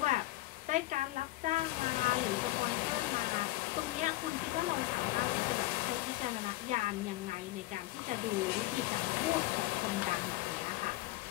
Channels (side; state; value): right; quieter; 18.6 dB